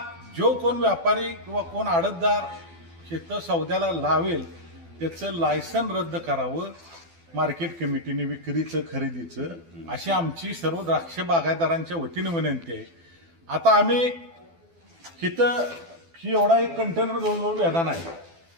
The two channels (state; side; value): late; left; 12 ms